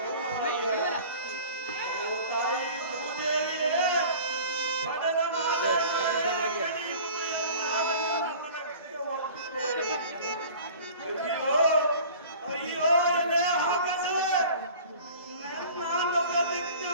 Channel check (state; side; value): inverted; both; correlation -0.43